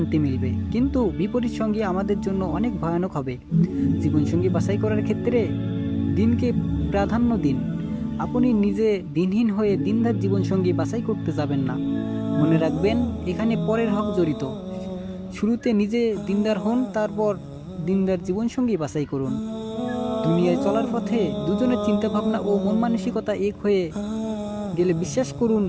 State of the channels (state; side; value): identical; both; correlation 1.00